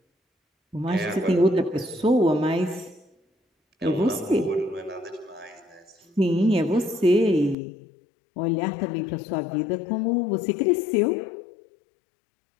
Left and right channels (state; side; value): drops out; right; at 7.6 s